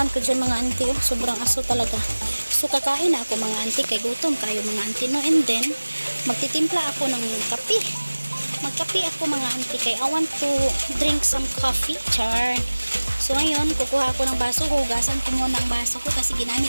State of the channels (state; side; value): inverted; both; correlation -1.00